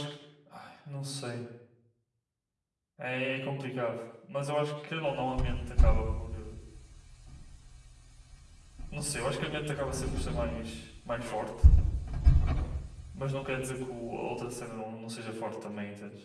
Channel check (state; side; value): identical; both; correlation 1.00